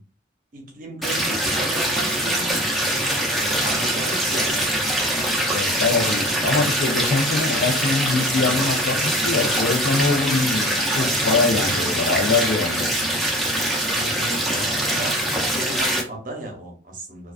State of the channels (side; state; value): both; normal; correlation 0.39